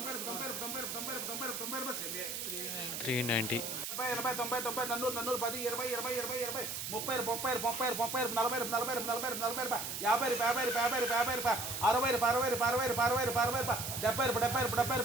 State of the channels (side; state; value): right; noise; hiss, 4 dB below the sound